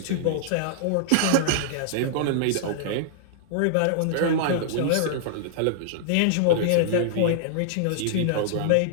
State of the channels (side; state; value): both; different; correlation -0.01